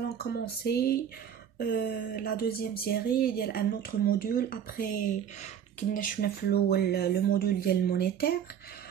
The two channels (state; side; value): quieter; left; 8.8 dB